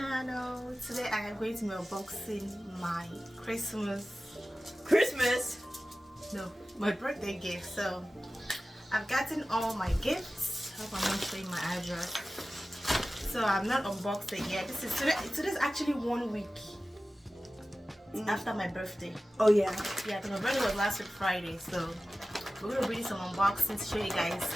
Today I am going to be unboxing my my birthday gift. So I've gotten all my gifts. Hope I'm not showing my address. So I'm not unboxed it yet. Today's actually 1 week after my birthday. Oh yeah, because my birthday was last week Friday. So we're gonna do some unboxings, show you guys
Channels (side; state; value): both; normal; correlation 0.96